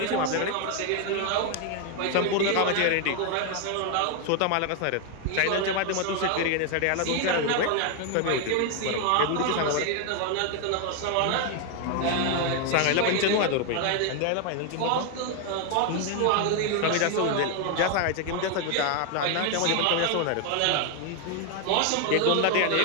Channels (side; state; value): both; different; correlation 0.01